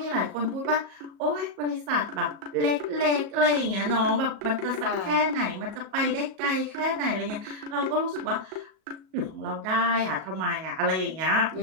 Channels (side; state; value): left; late; 37 ms